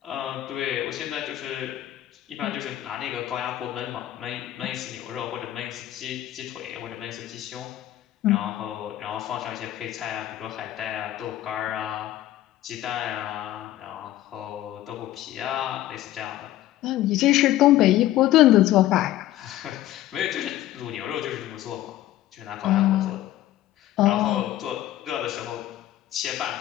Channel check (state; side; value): quieter; right; 14.0 dB